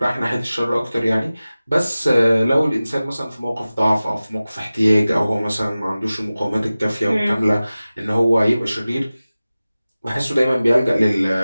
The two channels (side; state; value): both; inverted; correlation -0.97